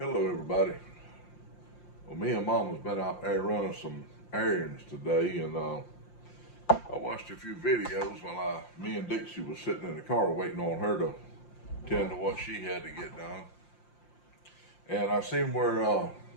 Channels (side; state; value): right; late; 5.7 ms